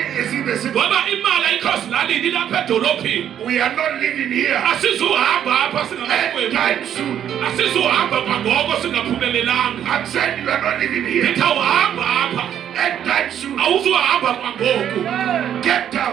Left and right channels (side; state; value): left; quieter; 9.9 dB